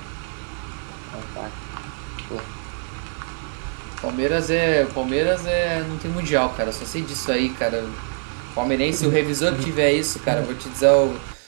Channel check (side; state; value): left; silent; 60 dB below the other